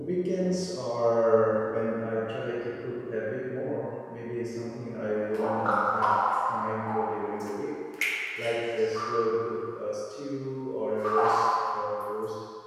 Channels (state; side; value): identical; both; correlation 1.00